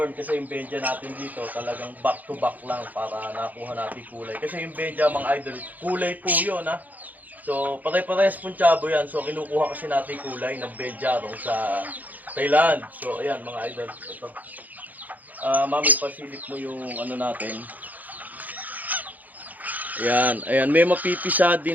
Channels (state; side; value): late; left; 0.081 ms